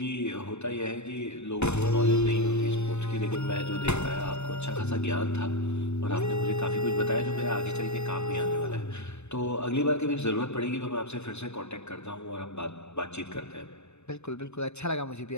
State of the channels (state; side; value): late; right; 0.81 ms